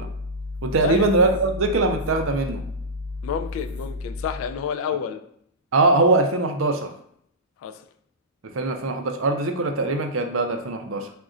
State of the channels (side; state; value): both; normal; correlation -0.16